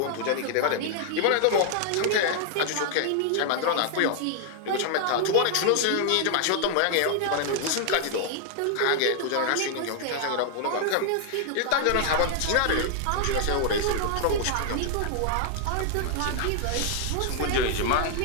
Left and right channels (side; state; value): both; different; correlation 0.00